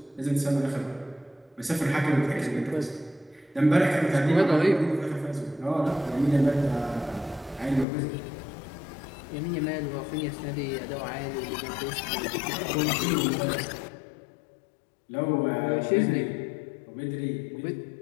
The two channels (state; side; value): drops out; right; at 7.9 s